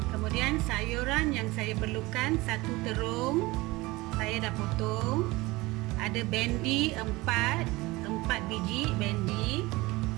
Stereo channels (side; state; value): left; quieter; 21.3 dB